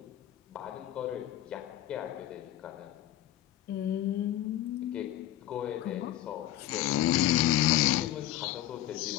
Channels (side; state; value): right; quieter; 13.5 dB